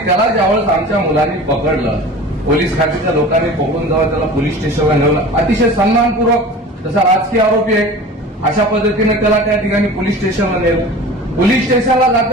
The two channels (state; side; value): normal; both; correlation 0.39